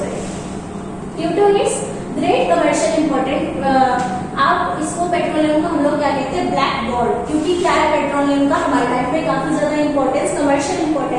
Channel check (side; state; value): both; identical; correlation 1.00